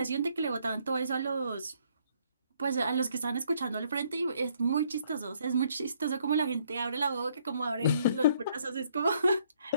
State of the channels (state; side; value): inverted; both; correlation -0.67